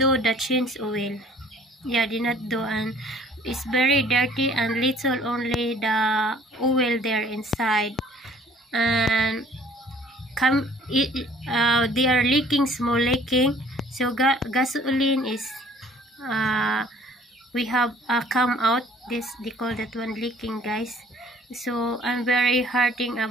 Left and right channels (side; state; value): both; normal; correlation 0.55